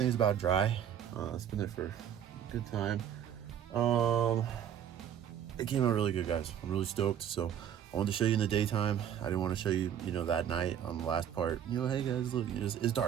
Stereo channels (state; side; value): quieter; left; 9.4 dB